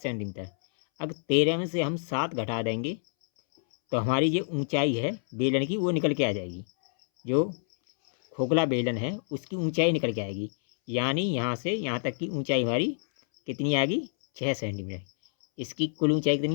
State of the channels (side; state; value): right; silent; 60 dB below the other